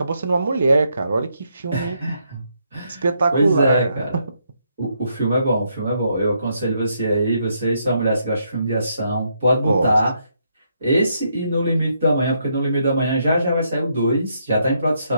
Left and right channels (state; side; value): inverted; both; correlation -0.76